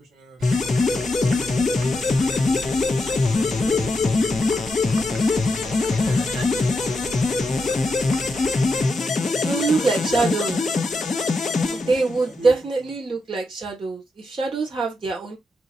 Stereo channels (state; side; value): normal; both; correlation 0.85